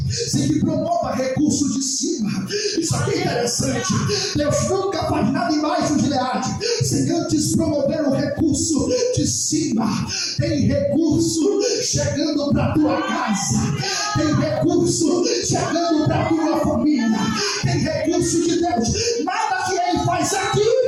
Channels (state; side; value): identical; both; correlation 1.00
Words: sem que promova recurso de cima. Isso aqui é interessante. Deus nunca faz nada embaixo de Leade sem antes promover o recurso de cima. Tem recurso chegando para tua casa, tem recurso chegando para tua família, tem recurso de Deus. Nada que Ele faz aqui